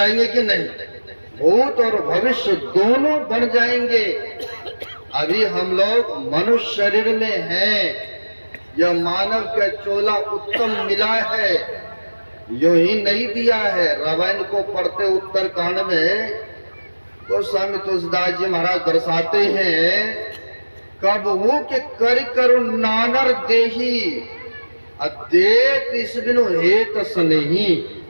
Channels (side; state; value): both; inverted; correlation -1.00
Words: कि नहीं? भूत और भविष्य दोनों बन जाएंगे। अभी हम लोग मनुष्य शरीर में हैं, यह मानव का चोला उत्तम मिला है, यो ही नहीं दिया है। रामायण को पढ़ते उत्तरकांड में गोस्वामी तुलसीदास जी महाराज दर्शाते हैं, कब हो के कर करो नानर देही, अदेत इस बिनु हेत स्नेही।